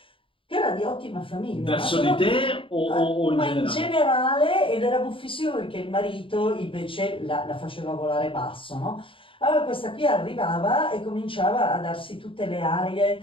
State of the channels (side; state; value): right; late; 0.25 ms